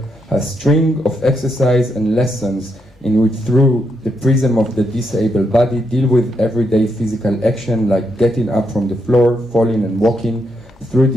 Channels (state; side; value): normal; both; correlation 0.80